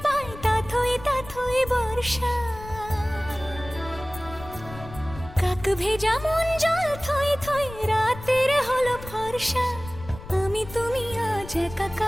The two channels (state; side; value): noise; left; rumble, 14 dB below the sound